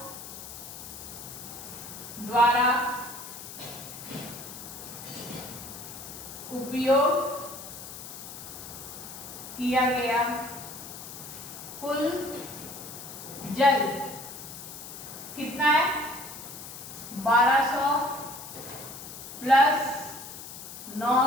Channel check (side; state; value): left; noise; hiss, 12 dB below the sound